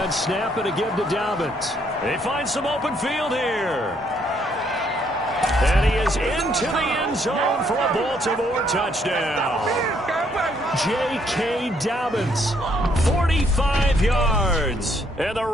snap and a give to Dobbins. They find some open field here. And he is into the end zone for a Baltimore touchdown. J.K. Dobbins, 45 yards. And the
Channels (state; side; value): normal; both; correlation 0.70